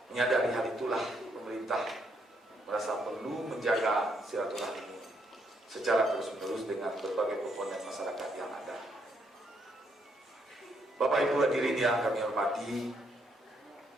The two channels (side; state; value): both; normal; correlation 0.74